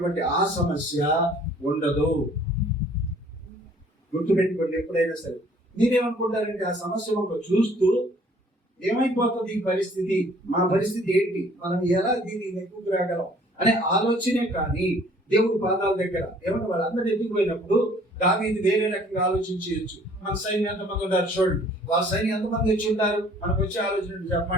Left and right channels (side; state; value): both; normal; correlation 0.56